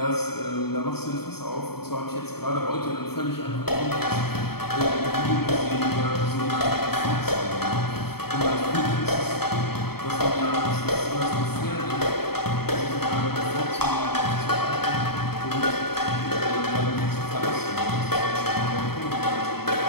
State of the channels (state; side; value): late; right; 0.96 ms